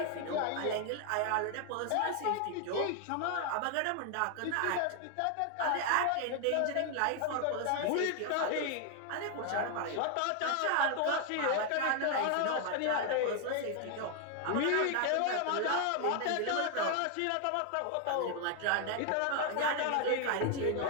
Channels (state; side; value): different; both; correlation 0.00